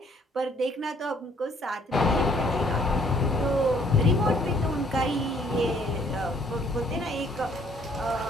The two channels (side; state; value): both; normal; correlation 0.63